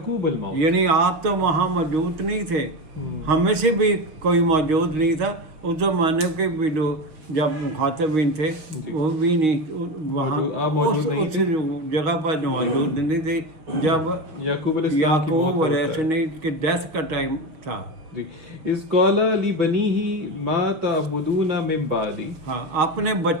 الموت، یعنی آپ تو وہاں موجود نہیں تھے، ہمیں سے بھی کوئی موجود نہیں تھا. اس زمانے کے بھی لوگ جب مخاطبین تھے وہ بھی نہیں وہاں اس جگہ پر موجود نہیں تھے جب یعقوب یعقوب علیہ السلام کی ڈیتھ کا ٹائم تھا. اذ قال لبنیہ ما تعبدون من بعدی، ہاں، اپنے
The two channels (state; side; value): late; left; 6.1 ms